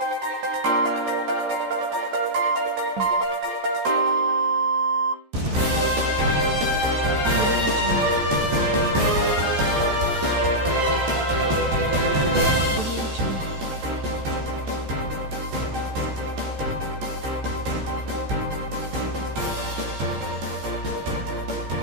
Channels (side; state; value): left; late; 14 ms